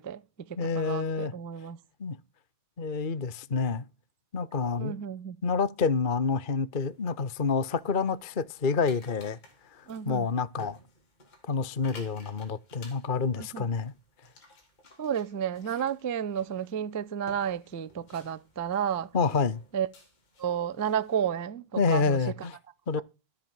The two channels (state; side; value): late; right; 2.3 ms